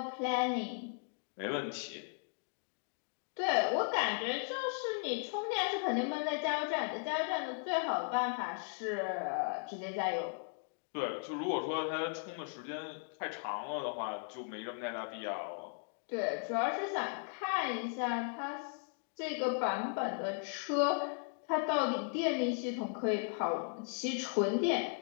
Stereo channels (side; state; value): right; silent; 53 dB below the other